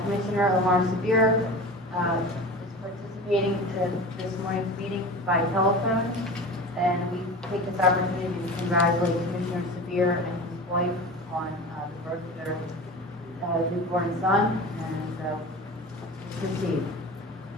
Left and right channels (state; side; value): normal; both; correlation 0.33